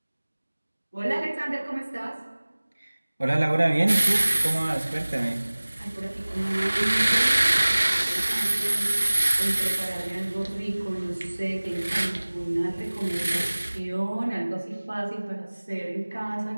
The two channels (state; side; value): inverted; both; correlation -1.00